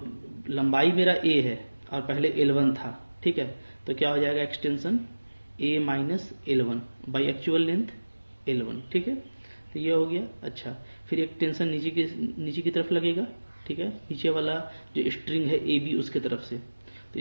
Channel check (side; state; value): both; inverted; correlation -1.00